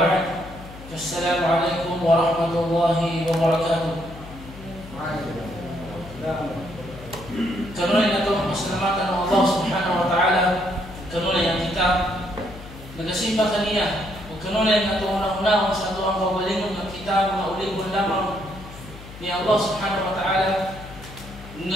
السلام عليكم ورحمة الله وبركاته. Kanunay na ito ang pasalamatan ng Allah subhanahu wa ta'ala. Kanunay ang kita nagasimba kaniya. O kanunay na ito unang-unahon sa ito ang kawalingon ng kita mga ulingon lamang ni Allah subhanahu wa ta'ala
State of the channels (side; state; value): left; noise; hum, 16 dB below the sound